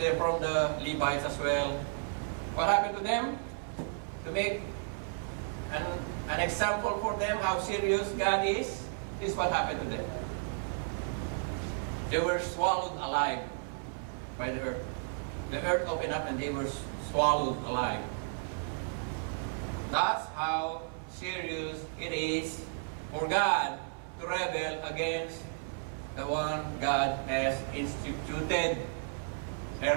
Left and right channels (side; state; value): left; silent; 56 dB below the other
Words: from the Levites as well. What happened to them? To make an example for them how serious God is, this is what happened to them. They were swallowed alive by the earth. The earth opened up and they were swallowed alive. That's how serious it is for God to rebel against the one God has instituted